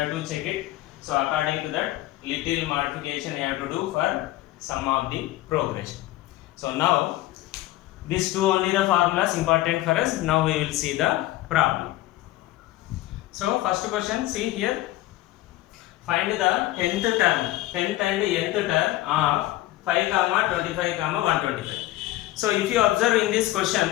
to check it. So according to that, little modification you have to do for sum of the progression. So now these two only the formulas important for us. Now we will see the problem. So first question, see here, find the 10th term, 10th and nth term of 5, 25, 125. So if you observe in this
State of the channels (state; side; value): quieter; right; 16.3 dB